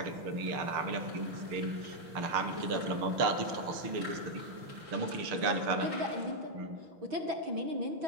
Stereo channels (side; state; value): left; late; 6.6 ms